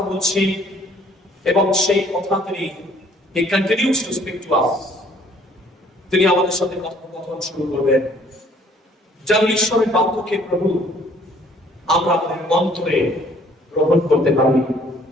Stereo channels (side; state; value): both; normal; correlation 0.60